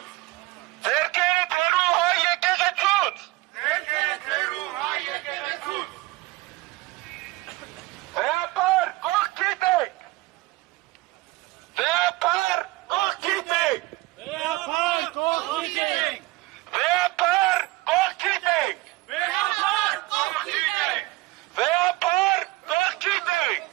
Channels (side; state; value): left; quieter; 20.2 dB